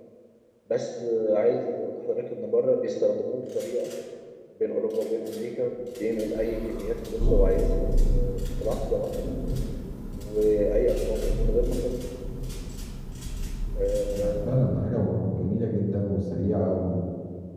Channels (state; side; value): identical; both; correlation 1.00